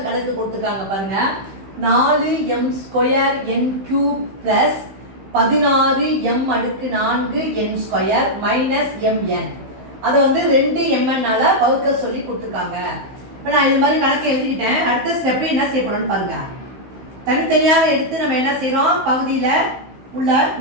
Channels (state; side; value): late; left; 15 ms